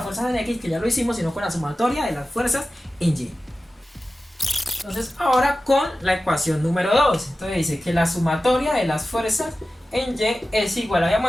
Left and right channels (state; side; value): normal; both; correlation 0.95